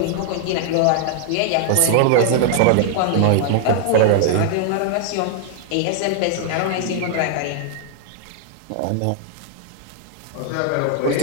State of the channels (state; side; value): different; both; correlation 0.00